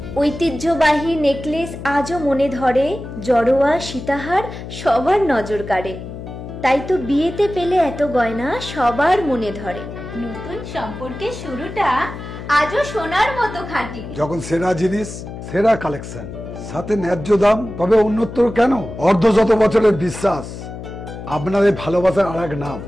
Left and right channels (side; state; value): left; noise; hum, 10 dB below the sound